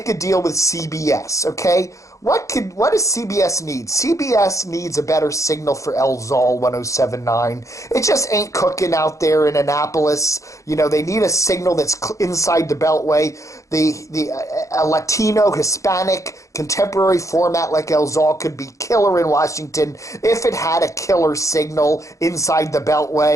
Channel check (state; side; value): late; right; 0.15 ms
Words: a deal with CBS, okay? What does CBS need? CBS needs a better signal for LZOL 107.9. It just ain't cooking out there in Annapolis. They need a signal that's inside the Beltway. A Latino, Hispanic, contemporary format like LZOL could be killer in Washington if it had a killer signal inside the